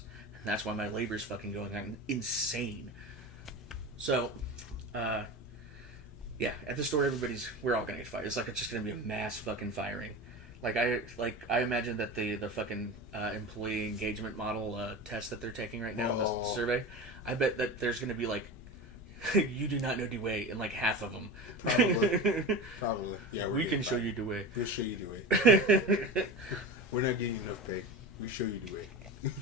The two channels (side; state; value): both; normal; correlation 0.28